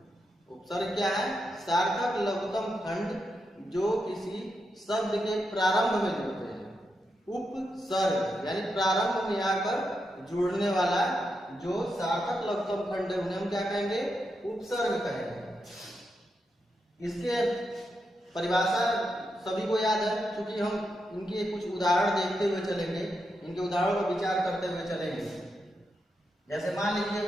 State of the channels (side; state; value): both; normal; correlation 0.85